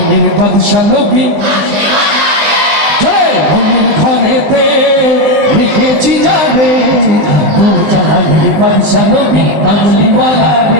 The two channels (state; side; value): late; left; 20 ms